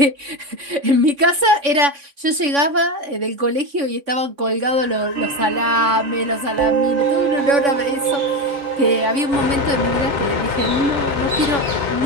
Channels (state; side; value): late; left; 3.6 ms